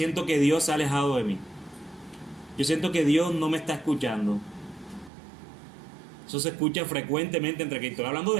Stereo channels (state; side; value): drops out; left; at 5.1 s